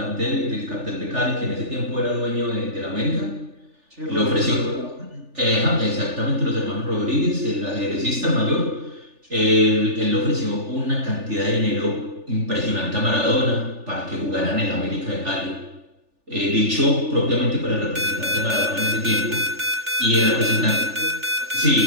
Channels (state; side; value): late; left; 3.4 ms